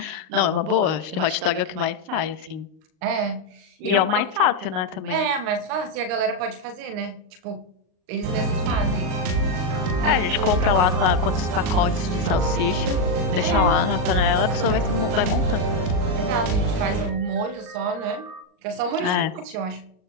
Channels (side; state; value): left; late; 38 ms